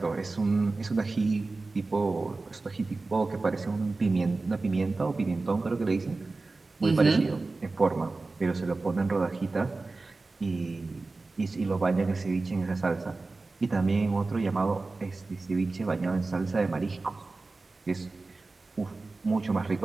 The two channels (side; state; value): left; quieter; 3.5 dB